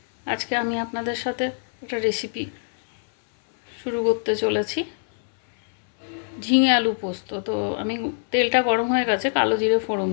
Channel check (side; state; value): right; silent; 63 dB below the other